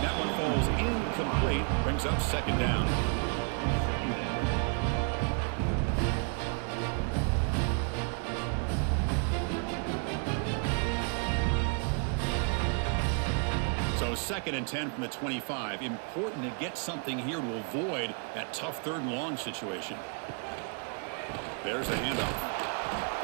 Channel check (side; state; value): left; quieter; 39.5 dB